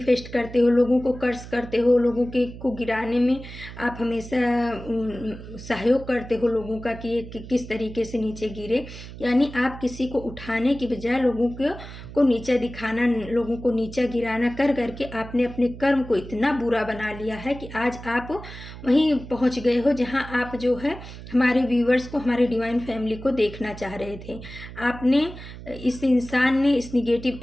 करते हो, लोगों को कर्ज करते हो, लोगों के को गिराने में आप हमेशा सहयोग करते हो लोगों का कि ये किस तरीके से नीचे गिरे। यानी आप किसी को उठाने की बजाय लोगों को नीचा दिखाना, लोगों को नीचा गिराना कर करके आपने अपने कर्म को इतना बुरा बना लिया है कि आज आप वहीं पहुंच गए हो जहां आप जो है हमारे व्यूअर्स को, हमारे डिवाइन फैमिली को देखना चाह रहे थे। आपने, इस इंसान ने, इस निगेटिव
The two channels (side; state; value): right; noise; hum, 13 dB below the sound